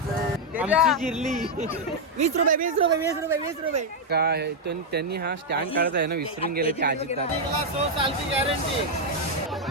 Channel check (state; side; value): normal; both; correlation -0.01